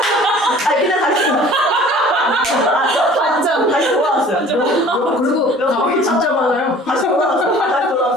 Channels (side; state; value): both; normal; correlation 0.48